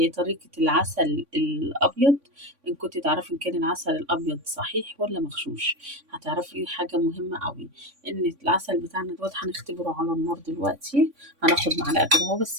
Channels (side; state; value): left; late; 3.5 ms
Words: طريقة العسل الابيض. ان كنت تعرفي ان كان العسل الابيض صحيح ولا مغشوش، هتعرفي حاجة مهمة قوي، ان العسل بتاعنا دوت هنختبره على النار دلوقتي. هناخد معلقة كده اهو،